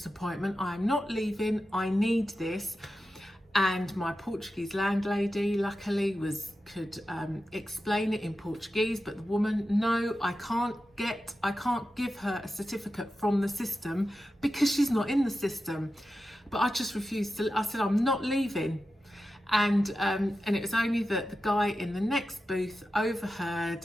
appointment. I'm not leaving. I need this. And my Portuguese landlady, luckily, could explain it in Portuguese. But the woman, no, I can't give her a certificate from the system because she's not in the system. But I just refused to. I said, I'm not leaving. And it was only that the guy in the next booth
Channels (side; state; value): both; normal; correlation 0.92